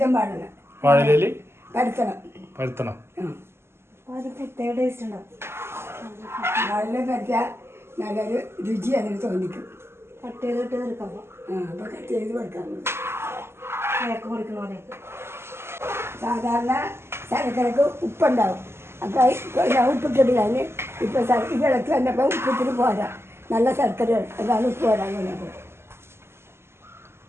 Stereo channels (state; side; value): late; left; 0.12 ms